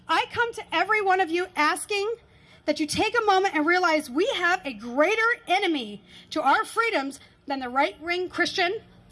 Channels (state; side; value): identical; both; correlation 1.00